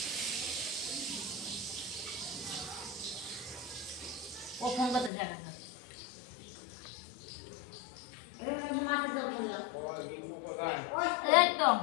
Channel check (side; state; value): right; drops out; at 5.1 s